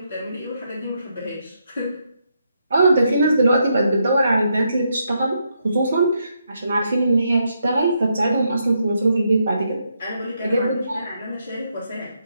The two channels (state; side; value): inverted; both; correlation -0.79